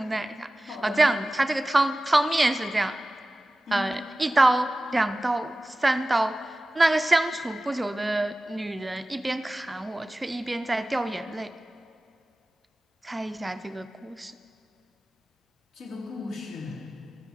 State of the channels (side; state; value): both; normal; correlation 0.97